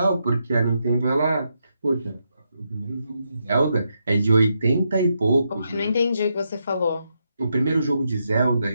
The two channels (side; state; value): both; inverted; correlation -0.82